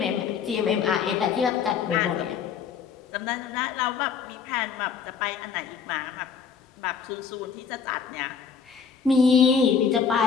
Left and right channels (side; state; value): right; quieter; 6.4 dB